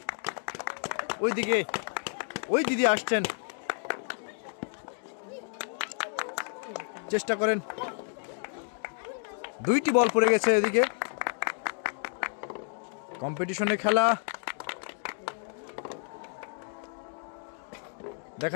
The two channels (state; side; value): silent; right; 57 dB below the other